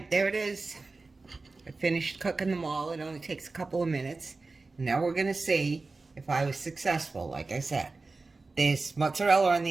there it is. I finished cooking them all. It only takes a couple of minutes. Now we're going to see if I was successful, like I said. This mozzarella on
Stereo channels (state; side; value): quieter; left; 3.7 dB